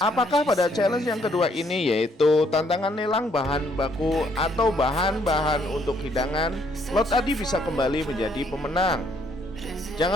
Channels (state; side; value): normal; both; correlation 0.68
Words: pada challenge yang kedua ini yaitu tantangan lelang bahan baku atau bahan-bahan untuk hidangan, Lo Adi bisa kembali menjadi pemenang?